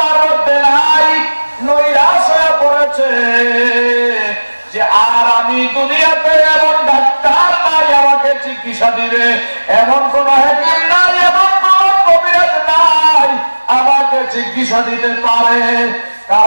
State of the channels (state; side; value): inverted; both; correlation -1.00